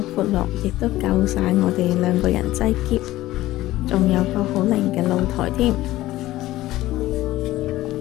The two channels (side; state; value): right; quieter; 16.2 dB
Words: 闊落，亦都夠晒我哋2個人擠喼。仲有個好靚嘅露台添。